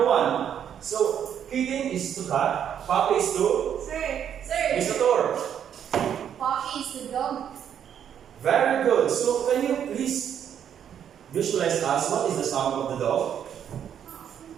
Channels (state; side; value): quieter; left; 9.0 dB